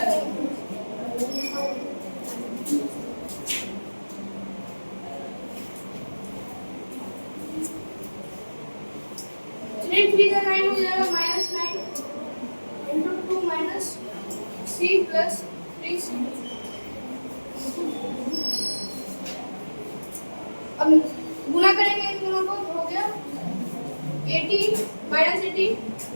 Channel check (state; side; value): inverted; both; correlation -1.00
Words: देंगे। 3 3 का 9 हो जाएगा -9 इंटू 2 -c प्लस 3c। अब गुना करेंगे इन दोनों को, हो गया 80 -80